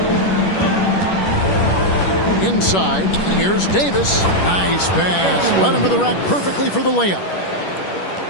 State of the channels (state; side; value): late; right; 10 ms